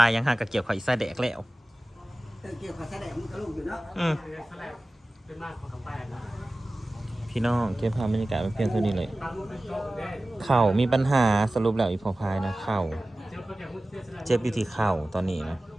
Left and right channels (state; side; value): normal; both; correlation 0.97